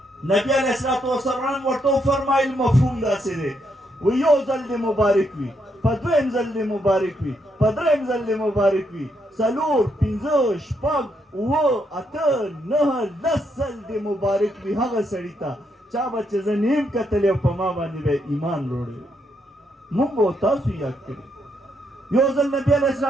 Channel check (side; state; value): both; normal; correlation 0.77